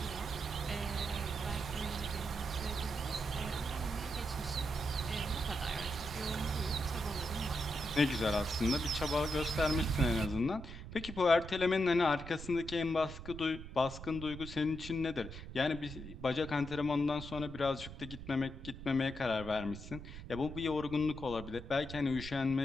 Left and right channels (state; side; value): noise; right; rumble, 11 dB below the sound